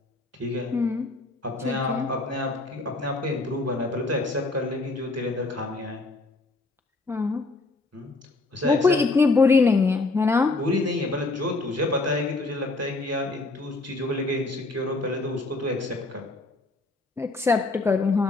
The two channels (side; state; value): right; quieter; 3.3 dB